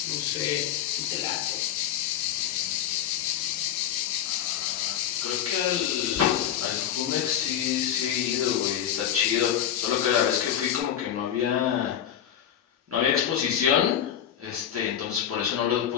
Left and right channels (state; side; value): quieter; right; 9.9 dB